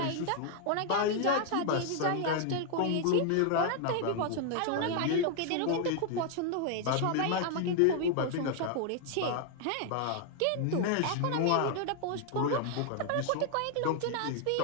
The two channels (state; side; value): different; both; correlation 0.00